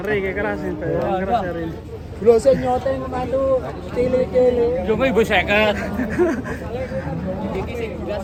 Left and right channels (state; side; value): identical; both; correlation 1.00